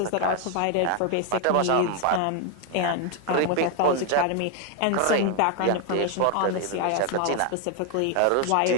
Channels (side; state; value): both; different; correlation 0.01